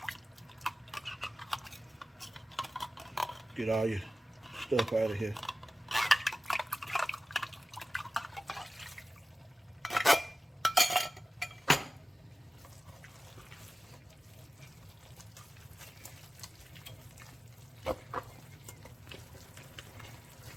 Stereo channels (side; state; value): both; normal; correlation 0.96